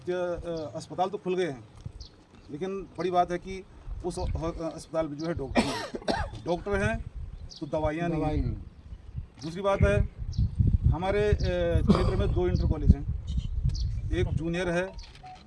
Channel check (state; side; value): identical; both; correlation 1.00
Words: अस्पताल तो खुल गए हैं, लेकिन बड़ी बात है कि उस अस्पताल में जो है डॉक्टर हैं तो दवाइयाँ नहीं। दूसरी बात है, हमारे क्षेत्र में 2 इंटर कॉलेज हैं, एक जूनियर है